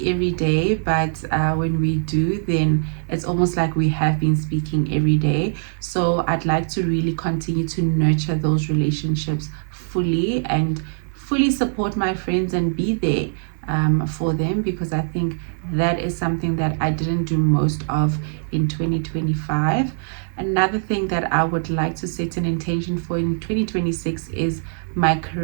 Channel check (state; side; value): silent; left; digital silence